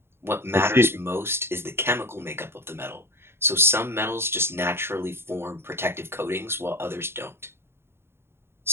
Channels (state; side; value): late; left; 0.12 ms